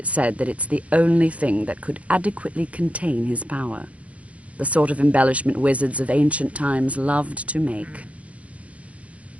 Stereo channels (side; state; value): left; late; 0.065 ms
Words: said that it's the only thing that could adequately contain his power. The sort of embellishment wizards of ancient times loved to make.